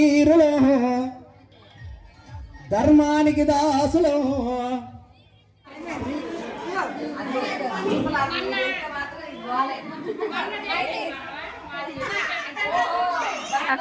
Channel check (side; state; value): both; identical; correlation 1.00